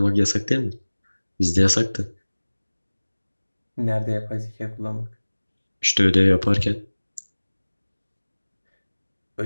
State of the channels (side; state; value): both; inverted; correlation -1.00